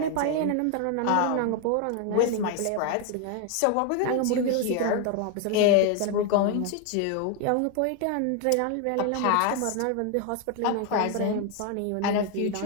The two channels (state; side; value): different; both; correlation 0.01